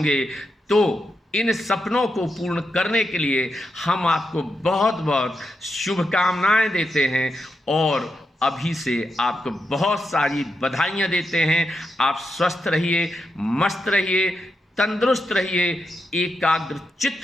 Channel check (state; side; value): normal; both; correlation 0.85